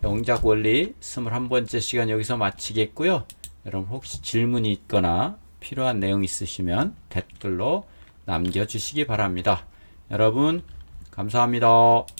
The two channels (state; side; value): inverted; both; correlation -1.00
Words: 영작 원리 21번째 시간 여기서 마치겠고요. 여러분 혹시 질문이 있거나 필요한 내용 있으시면 댓글로 남겨주시기 바랍니다. 여러분 감사합니다.